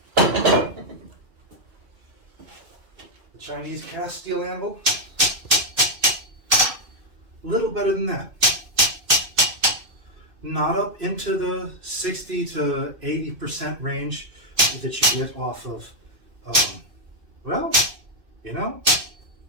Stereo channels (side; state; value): left; late; 2.6 ms